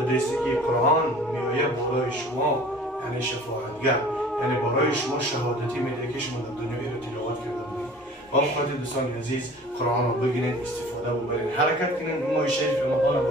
که قرآن میآید برای شما یعنی شفاعتگر، یعنی برای شما شهادتی میده که شما در دنیا رو تلاوت کرده بودید. با اون خاطر دوستان عزیز قرآن را بگیرید، استفاده ببرید، حرکت کنید. ماه شریف رمضان با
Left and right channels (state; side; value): normal; both; correlation 0.46